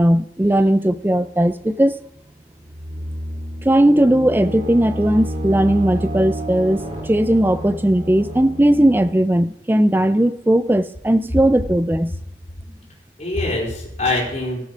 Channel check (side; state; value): both; normal; correlation 0.92